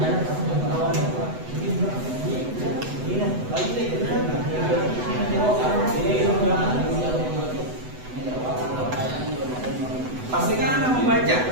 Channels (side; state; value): left; late; 8.0 ms